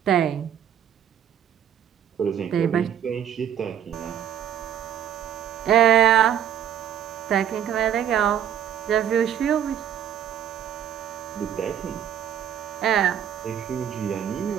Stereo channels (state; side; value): quieter; left; 9.6 dB